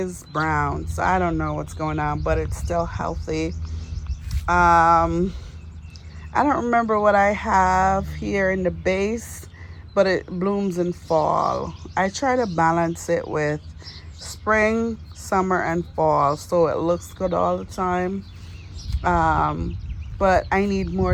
brown, so I don't know what's going on, but it's still healthy. I don't remember what I have here in the base, but it blooms in fall. I try to balance it with spring, summer, and fall, so it looks good all the time. But I need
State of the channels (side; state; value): both; identical; correlation 1.00